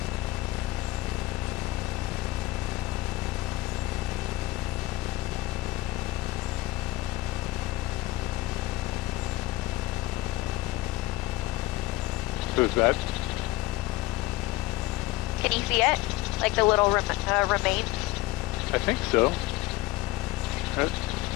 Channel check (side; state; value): right; quieter; 17.6 dB